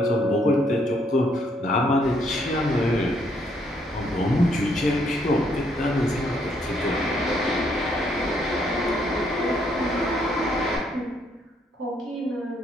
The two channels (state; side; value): normal; both; correlation 0.71